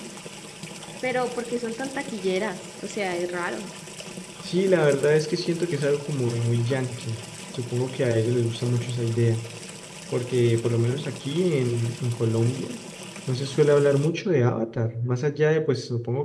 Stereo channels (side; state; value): both; identical; correlation 1.00